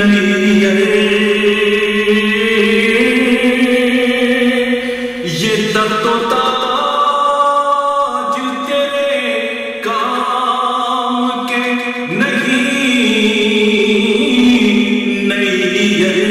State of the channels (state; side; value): identical; both; correlation 1.00